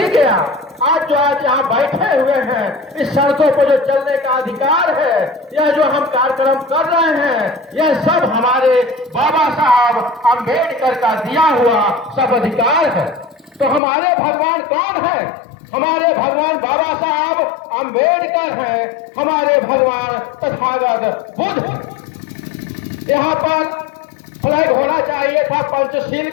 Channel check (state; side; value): drops out; right; at 13.8 s